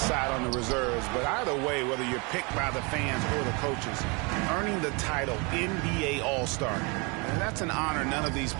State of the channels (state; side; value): quieter; left; 30.2 dB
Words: on the reserves. But either way, whether you're picked by the fans or the coaches, earning the title NBA All-Star, and that's an honor none of these